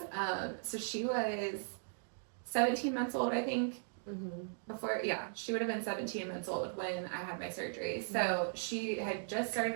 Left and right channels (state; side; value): silent; left; digital silence